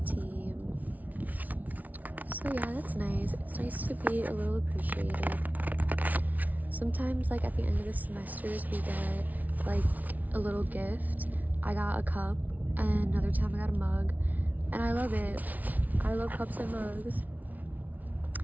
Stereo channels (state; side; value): late; left; 0.075 ms